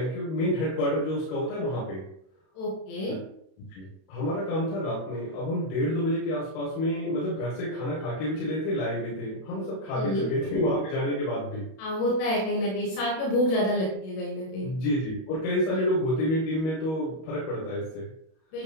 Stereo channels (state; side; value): late; right; 32 ms